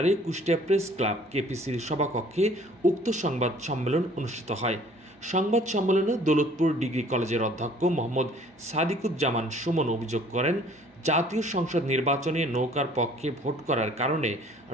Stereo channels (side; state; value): both; normal; correlation 0.55